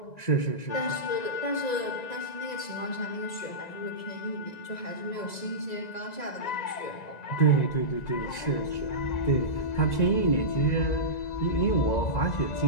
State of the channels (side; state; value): right; late; 1.9 ms